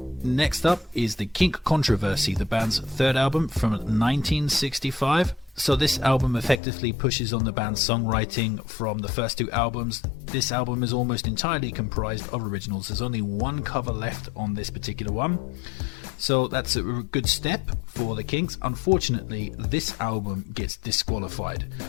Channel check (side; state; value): right; drops out; at 6.6 s